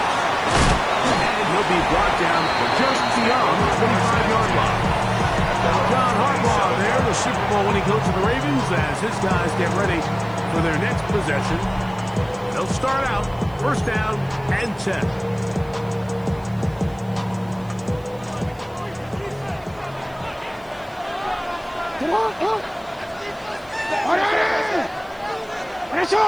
And he'll be brought down just beyond the 25-yard line. John Harbaugh there, the Super Bowl winning coach of the Ravens, as his guys get ready for their next possession. They'll start out 1st down and 10. Come on, come on.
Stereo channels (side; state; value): right; noise; hiss, 30 dB below the sound